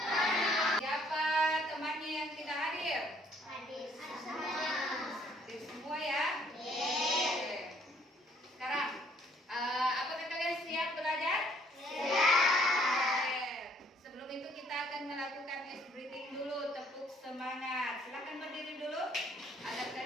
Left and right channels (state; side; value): normal; both; correlation 0.64